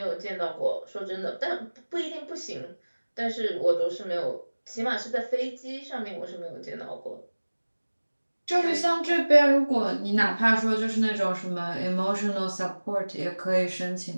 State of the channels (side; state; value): both; inverted; correlation -1.00